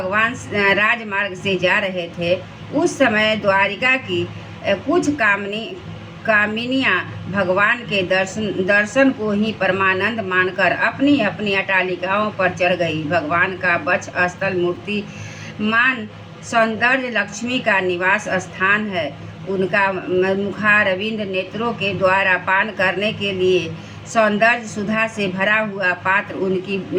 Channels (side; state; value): both; identical; correlation 1.00